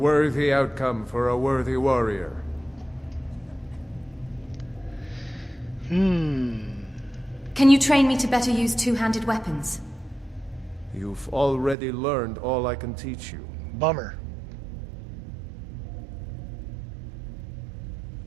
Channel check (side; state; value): left; drops out; at 11.8 s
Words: outcome for a worthy warrior. Can you train me to better use two-handed weapons? You've already learned all I can teach you. Bummer.